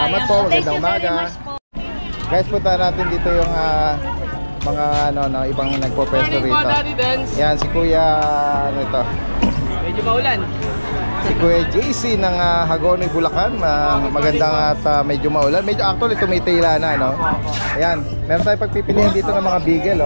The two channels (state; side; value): inverted; both; correlation -1.00